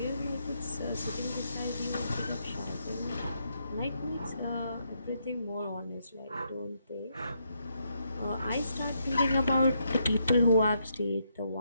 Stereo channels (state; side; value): inverted; both; correlation -0.78